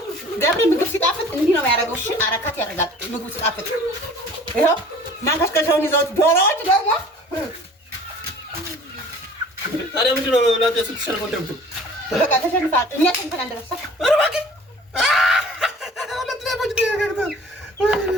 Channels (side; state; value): both; normal; correlation 0.48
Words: ገብሬ ምግብ ሲጣፍጥ እንዲህ ነው የሚያደርገው። እሺ አረካት ያደርጋል ምግቡ ሲጣፍጥ። ይኸው ማንከሽከሻውን ይዘውት ዶሮዎች ደግሞ ታዲያ ምንድን ነው እናንተ ስትሸንፉ እንደምትሉ? በቃ ተሸንፏል። እኛ ተንተን እንደረሳ